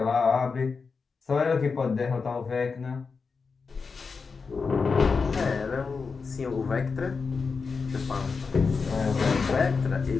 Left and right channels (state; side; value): quieter; right; 4.9 dB